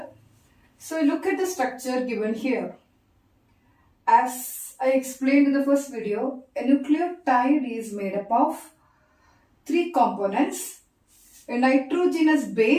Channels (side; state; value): both; identical; correlation 1.00